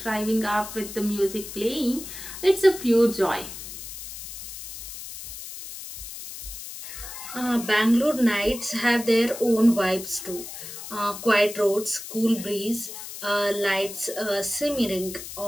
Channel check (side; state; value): left; noise; hiss, 11 dB below the sound